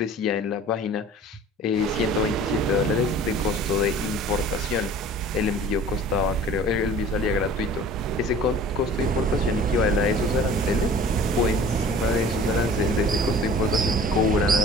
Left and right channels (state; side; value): normal; both; correlation 0.46